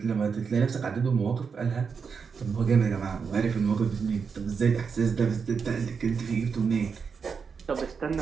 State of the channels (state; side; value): quieter; left; 5.8 dB